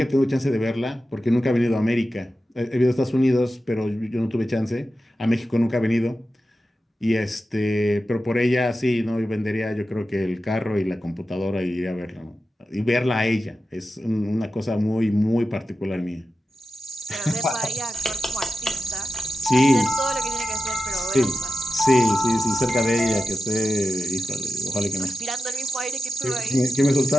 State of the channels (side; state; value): both; normal; correlation 0.92